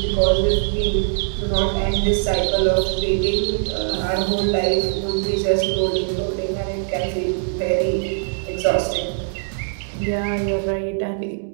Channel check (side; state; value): left; silent; digital silence